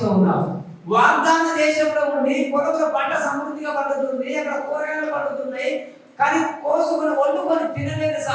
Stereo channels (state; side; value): identical; both; correlation 1.00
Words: ఉన్నావు. వాగ్దాన దేశంలో ఉండి పొలంలో పంట సమృద్ధిగా పండుతుంది, అక్కడ కూరగాయలు పండుతున్నాయి, కానీ కోసుకొని వండుకొని తినలేని